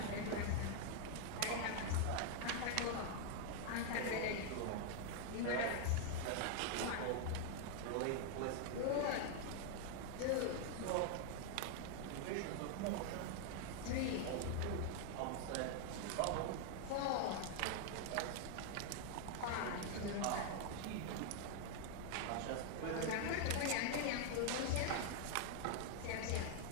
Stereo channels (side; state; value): both; different; correlation 0.00